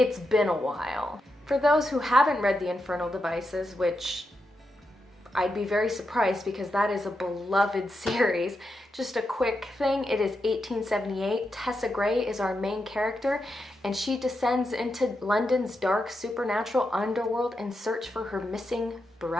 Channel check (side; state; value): both; normal; correlation 0.86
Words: been a while. For those who haven't read The Infernal Devices, which I'd be very surprised because that is a beloved series, just a quick thing, it is 1878. Tessa Gray is our main character, and she descends into London's dark supernatural underworld in search for her missing